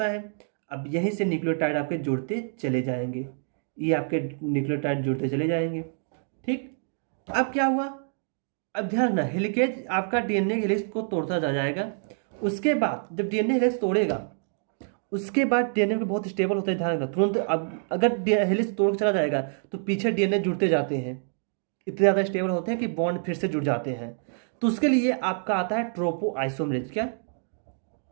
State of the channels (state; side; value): silent; left; 60 dB below the other